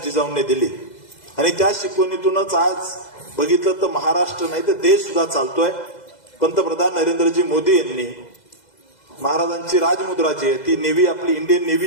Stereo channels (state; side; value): late; right; 2.0 ms